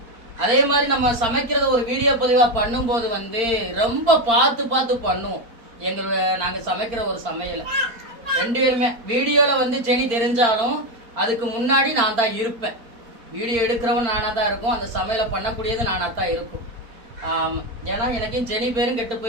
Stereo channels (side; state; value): left; late; 4.4 ms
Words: அதே மாதிரி நம்ம சமைக்கிறத ஒரு வீடியோ பதிவா பண்ணும்போது வந்து ரொம்ப பார்த்து பார்த்து பண்ணுவோம். நாங்க சமைக்கிற ஒரு சமையல 2 பேருமே வீடியோல வந்து செனி தெரிஞ்சாலும் அதுக்கு முன்னாடி நான் தான் இருப்பேன். வீடியோ எடுக்கிறவன் நானா தான் இருக்கும், அந்த சமையலை பண்ணக்கூடியது நானா தான் இருக்கும். ஏன்னா எனக்கும் செனி பேரும் கெட்டு